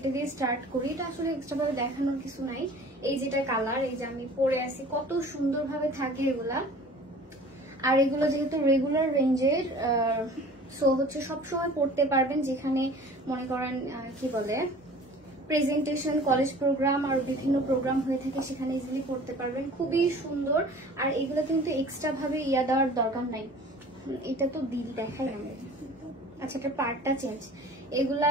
দিয়ে স্টার্ট করি। এটা আসলে এক্সট্রা ভাবে দেখানোর কিছু নাই। এই যেটা কালার, এই যে আমি পরে আছি, কত সুন্দর ভাবে থাকে এগুলা। আর এগুলো যেহেতু রেগুলার রেঞ্জের, সো হচ্ছে সবসময় পড়তে পারবেন, যেখানে মনে করেন কি বলে প্রেজেন্টেশন, কলেজ প্রোগ্রাম আর বিভিন্ন প্রোগ্রাম হয়ে থাকে, সেখানে ইজিলি পড়তে পারবেন। খুবই সুন্দর। আর এগুলো কিন্তু এক্সট্রা ভাবে ইয়া দেওয়ার দরকার নাই। এটা তো দিল দেখাই আমরা। আচ্ছা, এটা পার্টটা চেঞ্জ। এগুলা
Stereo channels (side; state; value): both; normal; correlation 0.45